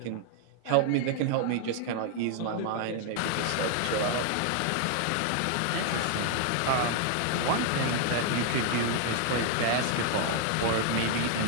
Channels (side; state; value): both; different; correlation 0.00